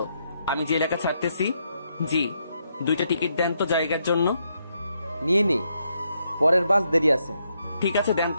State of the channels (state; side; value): inverted; both; correlation -0.78